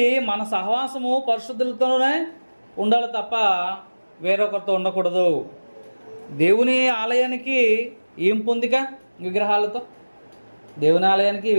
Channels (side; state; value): both; inverted; correlation -1.00